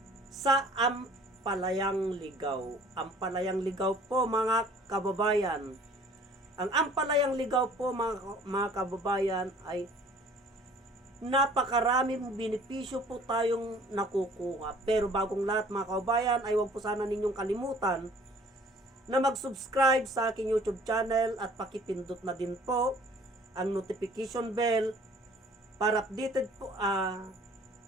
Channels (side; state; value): both; normal; correlation 0.53